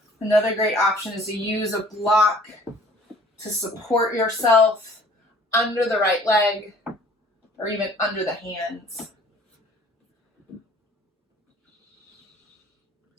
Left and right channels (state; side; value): normal; both; correlation 0.53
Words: Another great option is to use a block to support yourself under the right leg or even under the hands.